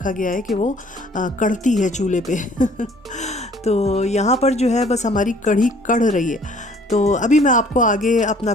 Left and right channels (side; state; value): both; normal; correlation 0.56